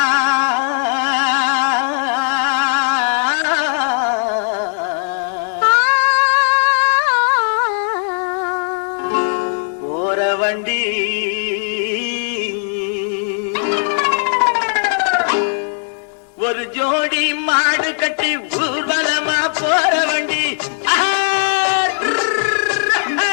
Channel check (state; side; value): silent; right; digital silence